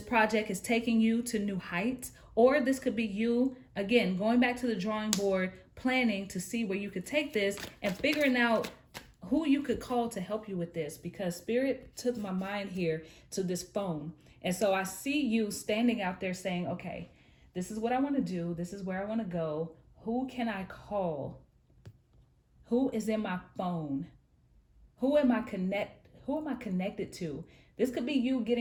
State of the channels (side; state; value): both; identical; correlation 1.00